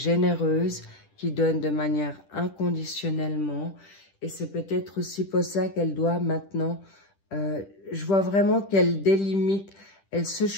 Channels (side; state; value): right; late; 10 ms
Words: qui donne de manière inconditionnellement. Et c'est peut-être aussi pour ça qu'elle doit maintenant, je vois vraiment qu'elle délimite, elle se